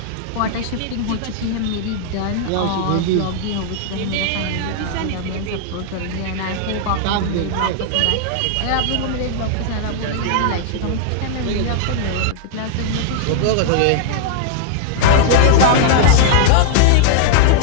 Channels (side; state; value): both; different; correlation -0.01